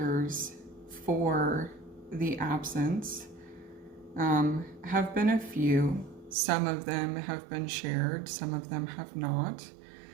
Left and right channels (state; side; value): drops out; left; at 6.4 s